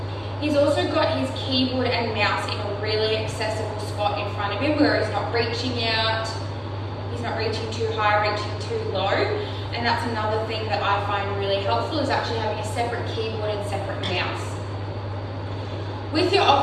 He's also got his keyboard and mouse in a really accessible spot in front of him where he's not reaching out, he's not reaching too high, reaching too low. And that's another thing that I find really helpful, is actually having a separate keyboard and separate mouse. With your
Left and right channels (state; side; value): identical; both; correlation 1.00